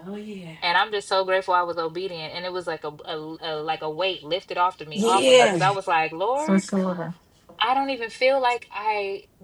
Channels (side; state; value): both; identical; correlation 1.00